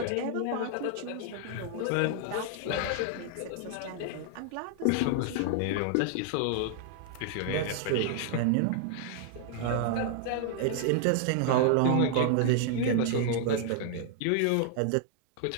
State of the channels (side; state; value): both; different; correlation 0.00